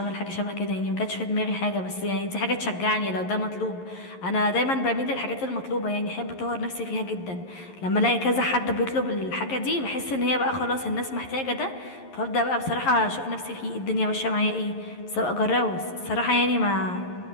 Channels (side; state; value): right; late; 11 ms